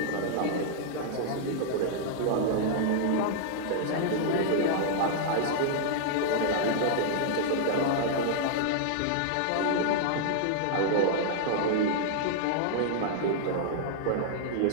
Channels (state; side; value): different; both; correlation -0.01